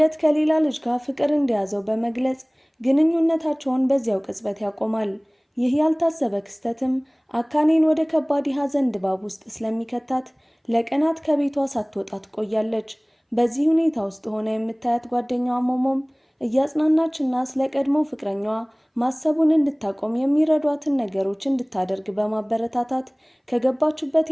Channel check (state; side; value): identical; both; correlation 1.00